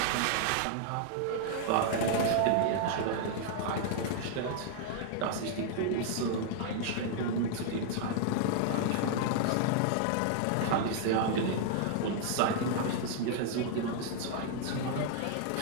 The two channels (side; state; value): both; different; correlation -0.01